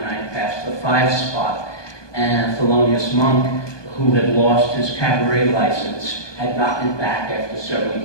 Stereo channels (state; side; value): late; right; 1.2 ms